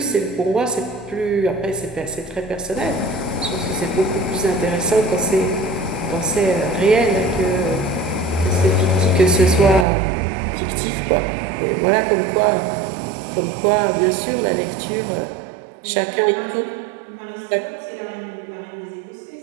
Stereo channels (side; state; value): left; drops out; at 9.9 s